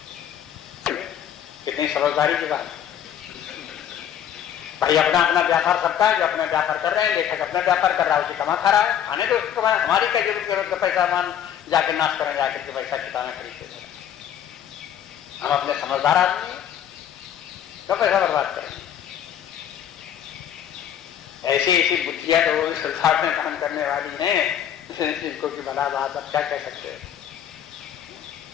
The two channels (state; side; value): quieter; right; 9.8 dB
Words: कितनी समझदारी की बात। भाई अपना अपना व्यापार करता है, जो अपना व्यापार कर रहे हैं, लेखक अपना व्यापार कर रहा है, उसे कमा खा रहा है, खाने तो उसको हमारी क्या जरूरत का पैसा मान जाके नाश करें, जाकर के पैसा किताबें खरीदते करें। हम अपने समझदार आदमी तो पैसा बर्बाद करें। ऐसी ऐसी बुद्धियां तो संसार में काम करने वाली हैं इनको की भला बात, अब क्या कह सकते हैं।